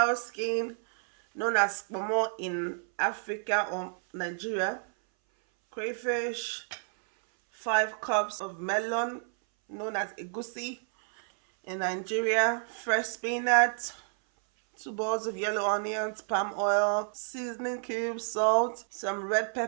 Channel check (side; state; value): left; silent; 58 dB below the other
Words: skin, known as momo in Africa or Nigeria, crayfish, 5 cups of melon, known as egusi in Nigeria, fresh spinach, 2 balls of yellow onions, palm oil, seasoning cubes, salt, some red